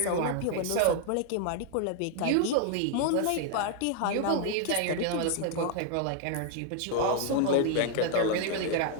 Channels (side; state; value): both; different; correlation 0.00